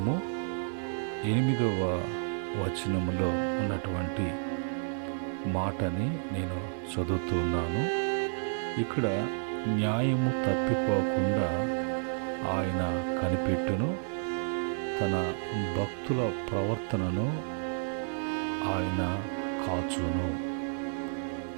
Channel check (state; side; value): silent; left; 57 dB below the other